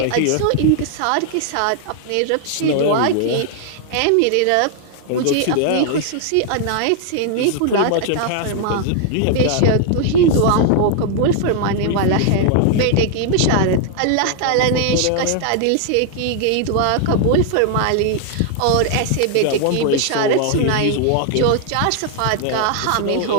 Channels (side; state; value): both; different; correlation 0.00